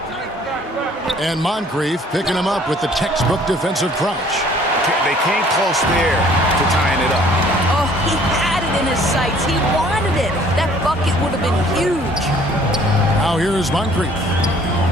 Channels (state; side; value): normal; both; correlation 0.56